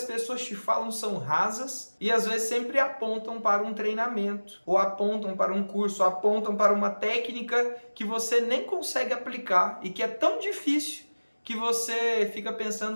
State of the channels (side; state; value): both; inverted; correlation -1.00